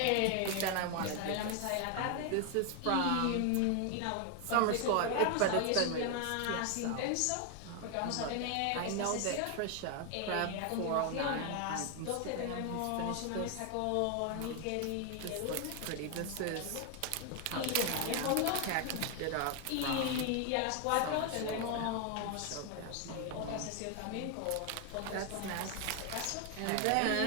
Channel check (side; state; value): both; different; correlation 0.01